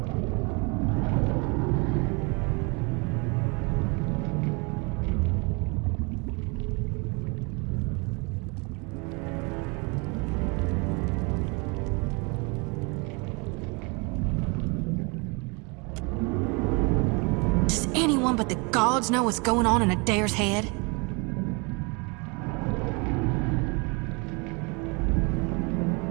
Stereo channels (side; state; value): left; quieter; 30.7 dB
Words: Does anyone but the gods know what's going on in Adair's head?